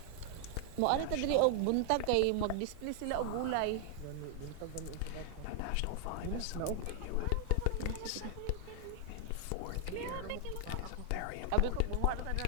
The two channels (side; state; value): both; different; correlation 0.00